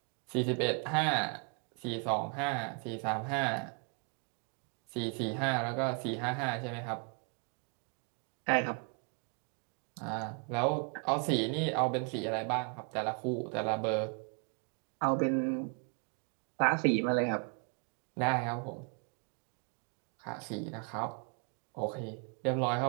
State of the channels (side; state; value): left; quieter; 37.8 dB